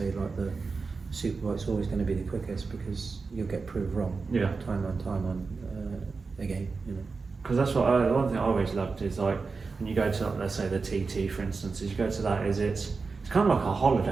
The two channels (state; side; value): quieter; left; 4.5 dB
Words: like the superbike's always going to be the quickest, because you'll get proved wrong. Time on again. You know. Because that's what one thing I always loved is like when you go to, let's say, the TT, for instance, is you go to that, is it's kind of like a